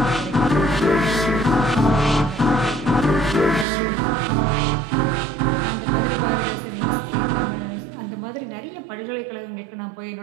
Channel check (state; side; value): drops out; left; at 3.7 s